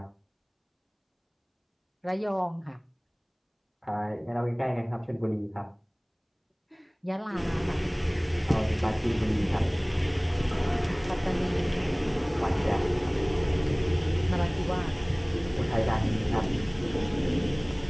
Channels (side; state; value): both; identical; correlation 1.00